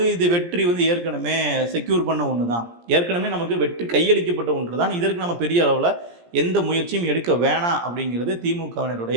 இது வெற்றி ஏற்கனவே செக்யூர் பண்ண ஒன்று தான், ஏற்கனவே நமக்கு வெற்றி கையளிக்கப்பட்ட ஒன்று தான். இதற்கு நம்ம பெரிய அளவில் எந்த முயற்சியும் எடுக்க வேணாம் அப்படிங்கிறது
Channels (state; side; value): late; left; 17 ms